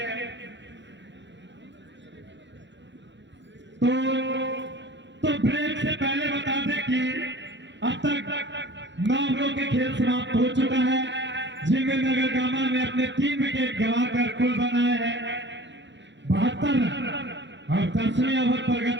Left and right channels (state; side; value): late; left; 0.52 ms